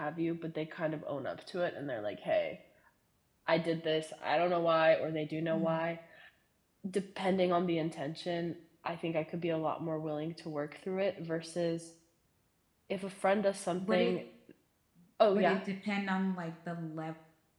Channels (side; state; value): both; identical; correlation 1.00